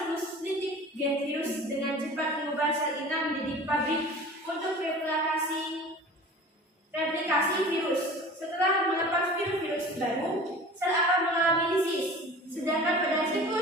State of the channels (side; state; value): both; normal; correlation 0.40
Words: litik, gen virus dengan cepat mengubah sel inang menjadi pabrik untuk replikasi virus. Setelah melepas virus baru, sel akan mengalami lisis. Sedangkan pada